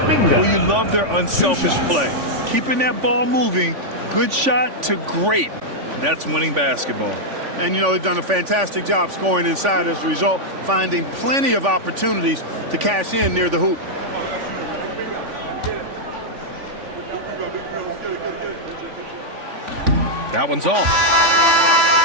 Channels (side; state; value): left; late; 3.5 ms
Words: you love their unselfish play. Keeping that ball moving, good shot to great. That's winning basketball. And, you know, they've done a fantastic job scoring inside as a result, finding plenty of opportunities to cash in near the hoop. That one's off.